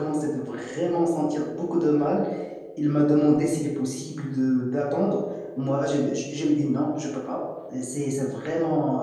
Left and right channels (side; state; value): both; identical; correlation 1.00